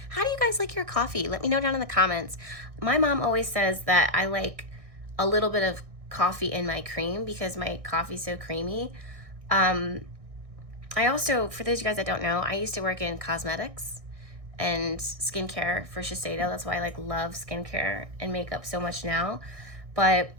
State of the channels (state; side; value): late; left; 1.6 ms